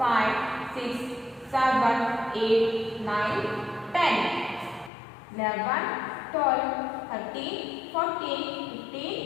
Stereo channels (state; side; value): drops out; right; at 4.9 s